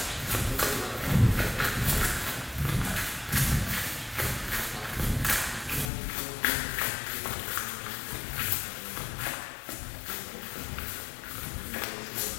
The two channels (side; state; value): right; drops out; at 5.9 s